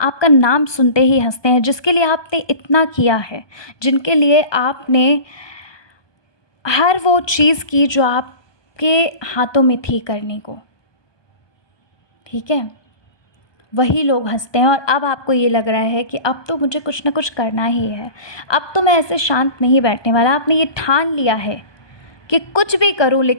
नाम सुनते ही हंसते हैं, जिसके लिए आपने इतना किया है, जिनके लिए आपने हर वो चीज़ की जो आपके हाथों में थी करने को। ठीक है? वही लोग हंसते हैं और अब आपको ये लग रहा है कि अब तो मुझे कुछ ना कुछ करना ही है, अब तो मैं ऐसे शांत नहीं बैठने वाला। आपने ये ठान लिया है कि कुछ भी करूं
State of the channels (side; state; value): right; late; 1.2 ms